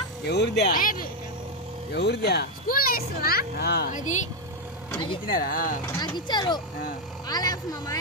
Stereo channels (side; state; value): both; normal; correlation 0.05